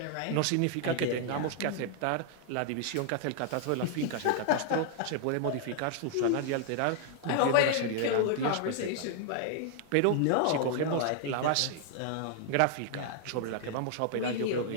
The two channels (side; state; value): both; different; correlation 0.00